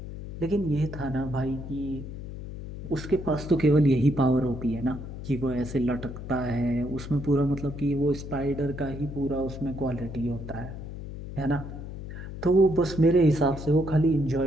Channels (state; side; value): noise; left; hum, 10 dB below the sound